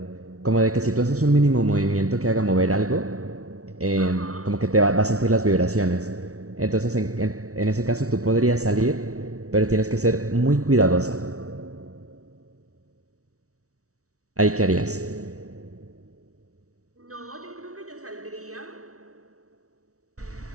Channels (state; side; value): late; left; 0.65 ms